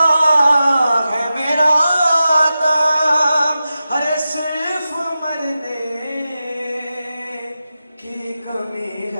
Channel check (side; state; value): both; inverted; correlation -0.92